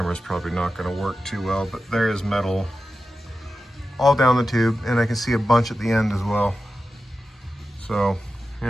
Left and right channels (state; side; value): normal; both; correlation 0.92